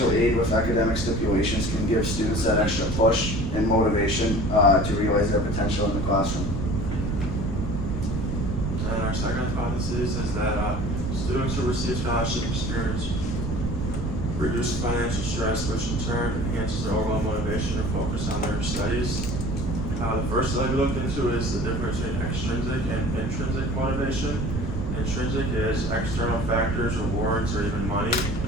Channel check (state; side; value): noise; right; rumble, 2 dB below the sound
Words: aid with academic stipulations can give students that extra push and motivation to realize their potential in the classroom. And our second hypothesis is that students who receive scholarship experience reduce financial stress, which in turn enhances their overall motivation and focus on their studies. The first study we looked into is the difference between extrinsic and intrinsic motivation. Intrinsic is external factors, rewards, or even money.